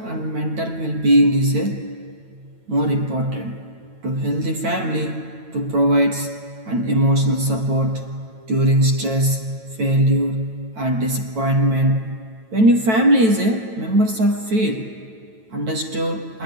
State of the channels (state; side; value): late; left; 9.1 ms